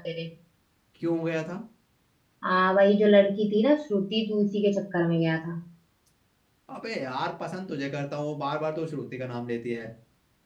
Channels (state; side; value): identical; both; correlation 1.00